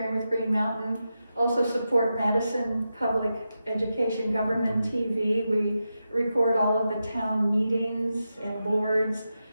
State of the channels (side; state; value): both; inverted; correlation -0.89